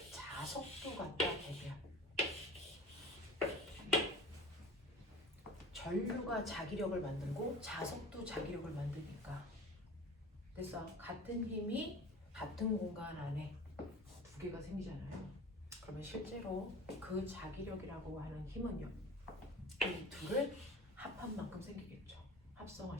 자석도 갖다 대면 전류가 자기력을 만들고 자석도 자기력을 만드니까 그래서 같은 힘이 같은 공간 안에 두 개가 생기잖아요. 그러면 실제로 그 자기력이라고 하는 힘은요 이 둘을 합한 만큼 생기겠죠.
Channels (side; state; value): both; normal; correlation 0.39